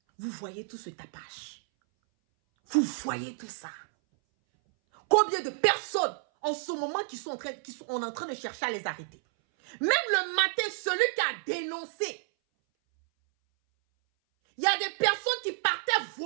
Vous voyez tout ce tapage. Vous voyez tout ça. Combien de personnes en ce moment qui sont en train de chercher à les arrêter. Même le matin, celui qui a dénoncé. Il y a des personnes qui partaient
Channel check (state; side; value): silent; left; 58 dB below the other